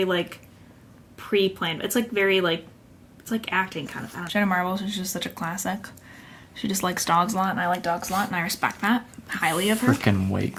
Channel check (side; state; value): both; identical; correlation 1.00